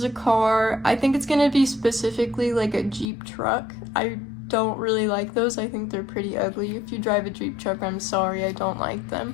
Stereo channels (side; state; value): right; drops out; at 3.1 s